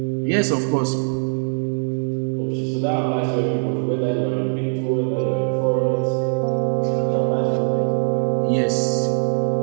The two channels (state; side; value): silent; left; digital silence